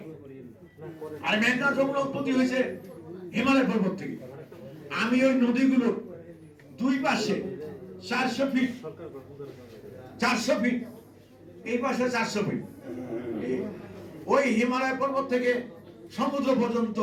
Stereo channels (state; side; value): identical; both; correlation 1.00